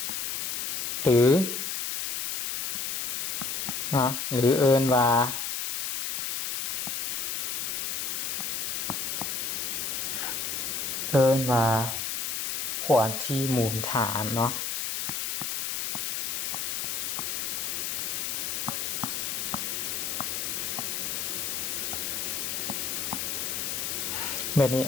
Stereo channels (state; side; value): noise; left; hiss, 1 dB below the sound